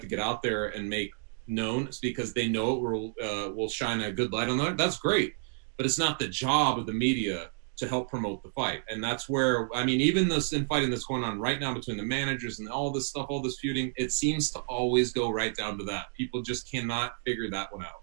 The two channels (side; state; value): left; silent; digital silence